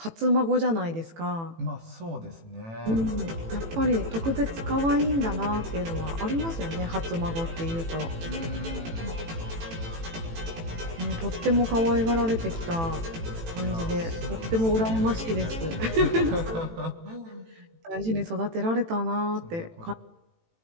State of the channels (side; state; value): left; late; 18 ms